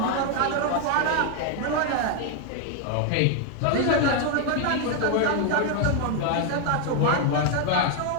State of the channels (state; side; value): different; both; correlation 0.01